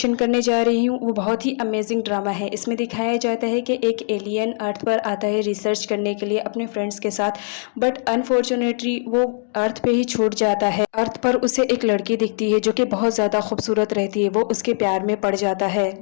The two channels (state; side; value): silent; right; 65 dB below the other